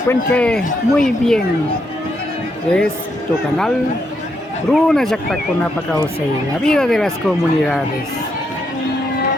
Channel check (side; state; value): both; normal; correlation 0.78